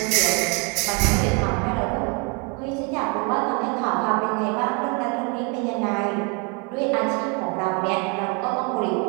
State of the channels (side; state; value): left; quieter; 33.4 dB